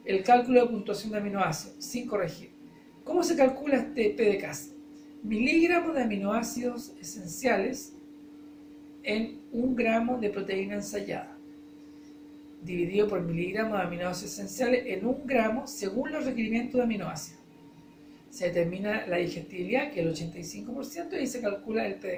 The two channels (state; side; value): identical; both; correlation 1.00